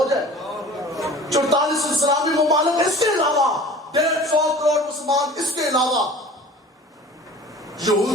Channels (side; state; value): both; normal; correlation 0.43